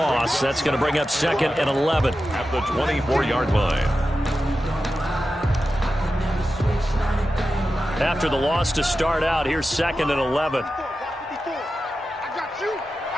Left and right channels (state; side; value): normal; both; correlation 0.92